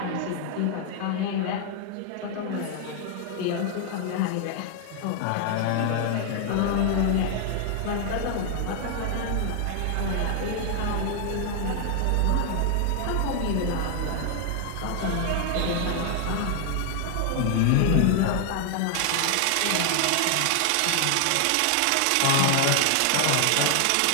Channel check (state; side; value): different; both; correlation 0.00